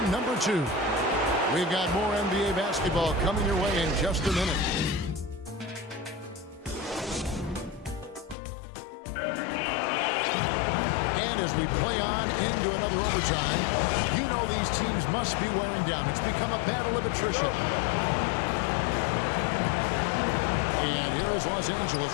number 2. We've got more NBA basketball coming your way in just a minute. And as we play on into another overtime, you know these teams must be wearing down. It's become a battle of attrition. And here is Los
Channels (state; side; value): drops out; right; at 8.3 s